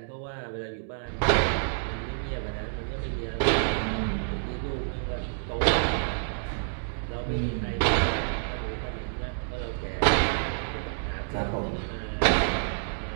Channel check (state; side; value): silent; left; digital silence